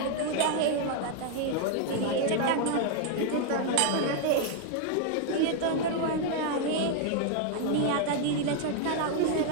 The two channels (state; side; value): different; both; correlation 0.00